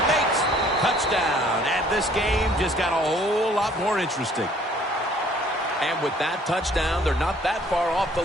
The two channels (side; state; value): both; normal; correlation 0.58